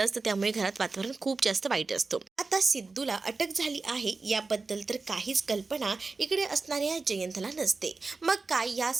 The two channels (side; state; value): left; quieter; 4.0 dB